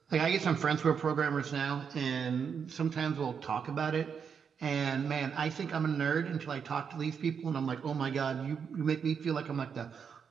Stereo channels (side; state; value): left; quieter; 6.7 dB